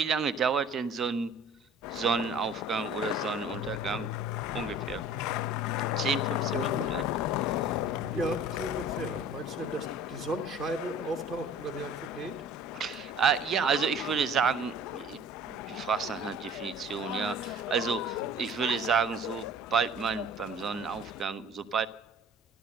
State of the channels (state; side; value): normal; both; correlation 0.47